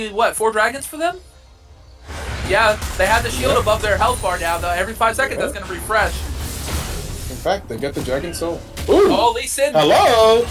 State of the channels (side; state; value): both; identical; correlation 1.00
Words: what 4 dragons for them. Yeah, they have the shield Yep. above their health bar now. Though every 5 seconds, that's Yep. gonna refresh. In fact, they get the dragon soul. Ooh. Oh, Lee Sin Hello.